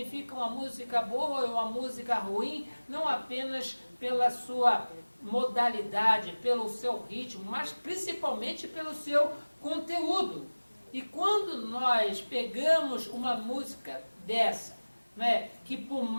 uma música boa e uma música ruim, não apenas pela sua modalidade, pelo seu ritmo, mas principalmente pelo seu conteúdo. E quando nós pegamos uma música dessa, né, que por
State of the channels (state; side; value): inverted; both; correlation -1.00